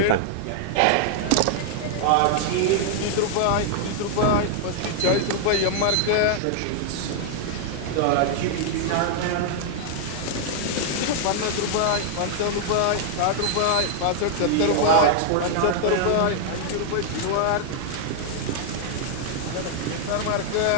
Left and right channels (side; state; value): both; different; correlation 0.00